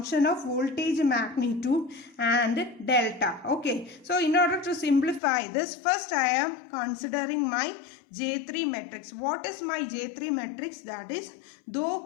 of voltage magnitude and delta. Okay, so in order to simplify this, first I am considering my J3 matrix. What is my J3 matrix? That is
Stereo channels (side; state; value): right; drops out; at 5.2 s